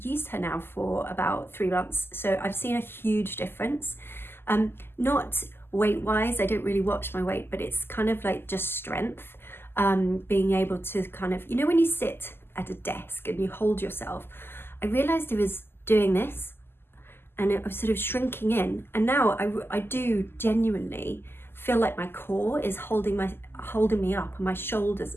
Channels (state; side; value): late; right; 0.11 ms